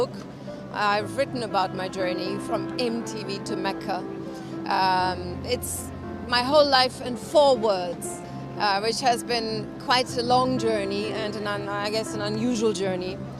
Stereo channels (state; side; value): identical; both; correlation 1.00